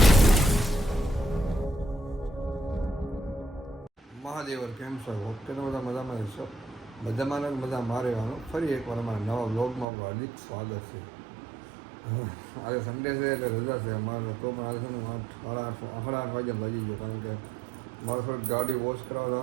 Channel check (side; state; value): left; drops out; at 9.9 s